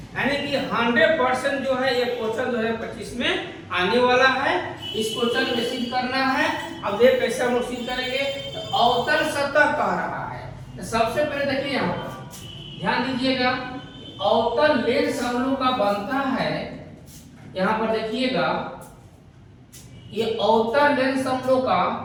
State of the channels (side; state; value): both; identical; correlation 1.00